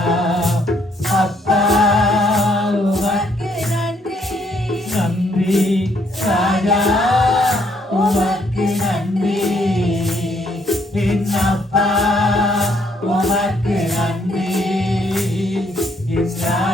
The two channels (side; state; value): both; normal; correlation 0.70